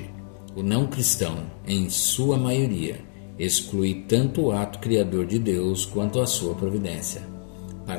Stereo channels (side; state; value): right; silent; digital silence